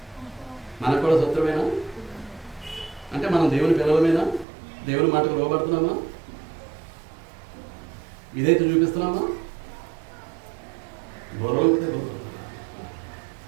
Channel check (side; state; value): left; drops out; at 4.5 s